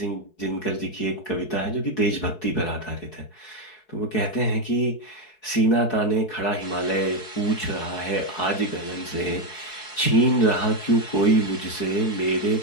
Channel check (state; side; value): late; right; 4.7 ms